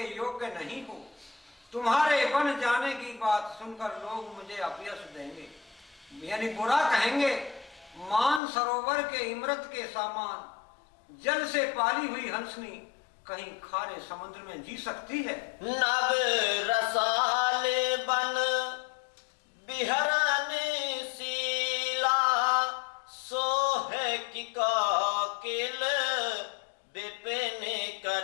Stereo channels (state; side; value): drops out; right; at 8.4 s